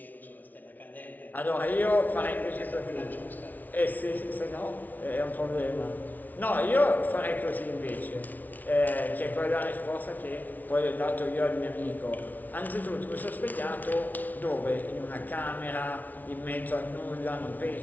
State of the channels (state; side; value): late; right; 0.079 ms